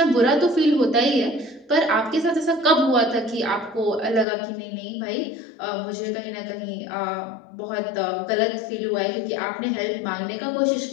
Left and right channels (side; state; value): right; drops out; at 4.2 s